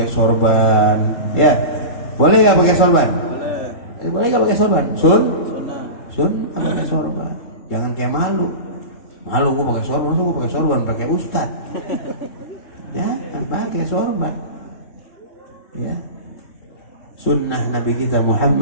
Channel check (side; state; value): right; late; 3.7 ms